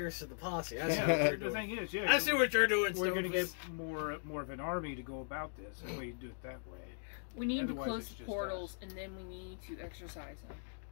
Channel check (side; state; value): right; silent; digital silence